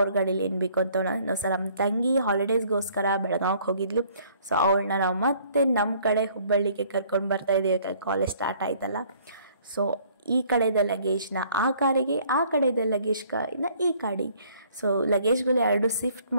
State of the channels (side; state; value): both; inverted; correlation -0.59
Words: ಗಾಡೀಲಿ ಏನು ಬೇಕು ಅಂತ ನಾವು ಸರ್ ನಮ್ಮ ತಂಗಿ ಹಾಲಿಡೇಸ್ಗೋಸ್ಕರ ಬೆಳಗಾವಿಗೆ ಹೋಗಿದ್ಲು. ಸೊ ಅವಳನ್ನ ನಾವು ಮತ್ತೆ ನಮ್ಮ ಕಡೆ ಹುಬ್ಬಳ್ಳಿಗೆ ಕರ್ಕೊಂಡು ಬರ್ತಾ ಇದ್ದೀವಿ, ಕಾಲೇಜ್ ಸ್ಟಾರ್ಟ್ ಆಯ್ತಲ್ಲ. ಸೊ ಈ ಕಡೆದ ಲಗೇಜ್ನ ಆ ಕಾರಿಗೆ, ಆ ಕಡೆದ ಲಗೇಜ್ನ ಈ ಕಾಡಿಗೆ. ಸೊ ಲಗೇಜ್ಗಳು 2 ಶಿಫ್ಟ್